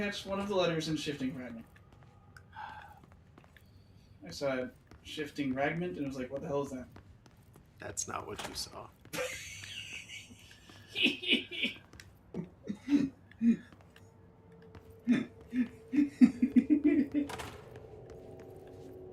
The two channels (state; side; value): identical; both; correlation 1.00